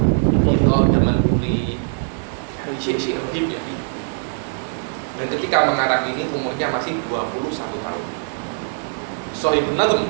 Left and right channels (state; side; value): silent; left; 63 dB below the other